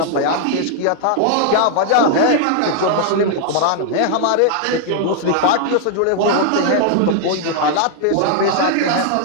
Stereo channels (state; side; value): different; both; correlation 0.00